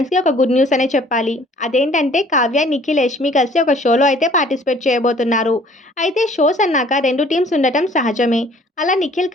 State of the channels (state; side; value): normal; both; correlation 0.55